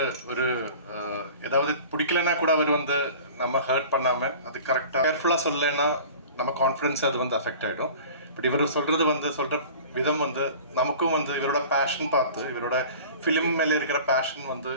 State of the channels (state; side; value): inverted; both; correlation -0.41